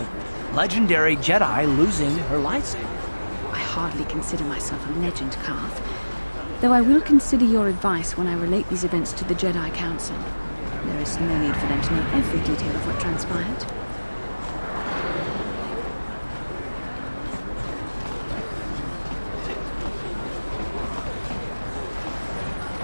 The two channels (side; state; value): both; inverted; correlation -1.00